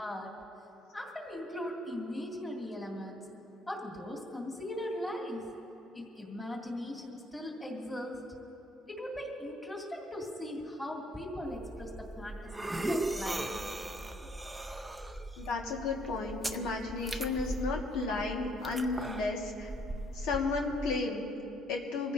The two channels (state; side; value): normal; both; correlation 0.65